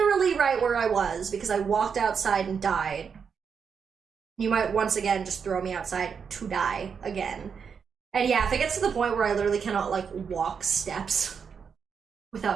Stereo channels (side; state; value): left; quieter; 6.4 dB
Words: right where I was because I walked outside and died. You might once again just throw me outside to die again. And yeah, if it gets to the point where I literally cannot, like, walk steps